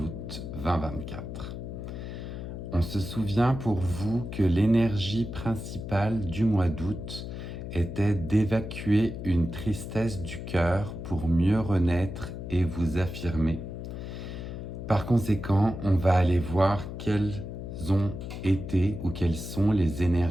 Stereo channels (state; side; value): noise; left; hum, 8 dB below the sound